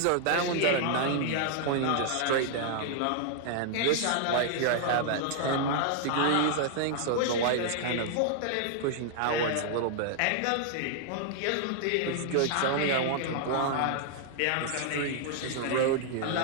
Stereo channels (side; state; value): both; different; correlation -0.01